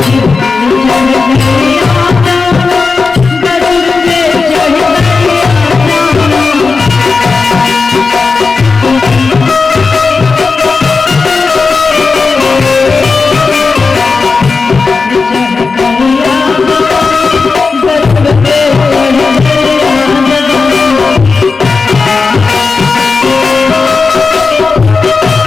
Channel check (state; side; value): quieter; right; 4.5 dB